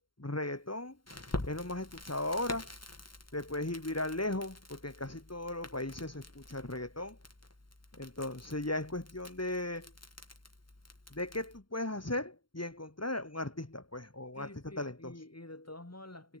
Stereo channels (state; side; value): late; right; 0.73 ms